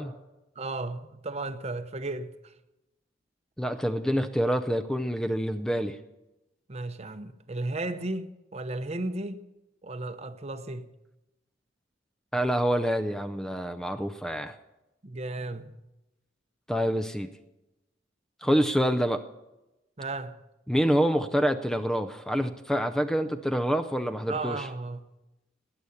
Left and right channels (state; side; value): normal; both; correlation 0.87